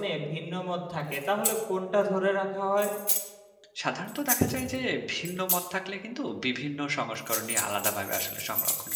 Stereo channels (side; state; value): both; identical; correlation 1.00